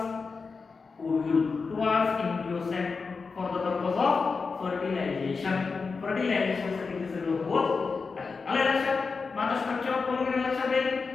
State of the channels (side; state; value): right; quieter; 4.7 dB